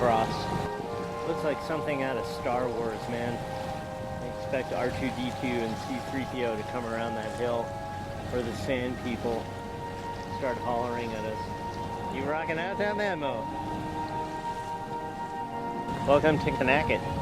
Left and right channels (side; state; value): both; identical; correlation 1.00